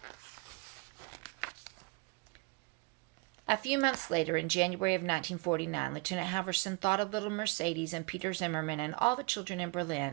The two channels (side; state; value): left; quieter; 28.2 dB